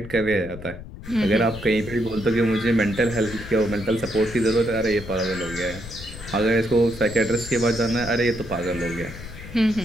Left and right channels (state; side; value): noise; left; rumble, 13 dB below the sound